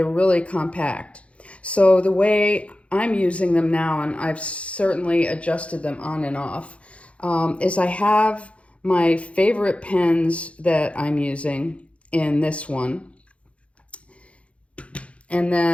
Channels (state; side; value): late; right; 0.062 ms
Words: really compact. So the way I'm using them now, and I've certainly adjusted them on and off, is I have my favorite pens that I'm using in this one, and